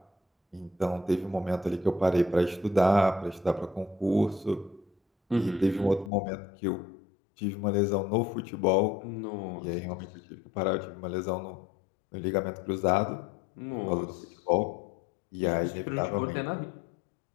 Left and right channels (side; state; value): right; drops out; at 6.1 s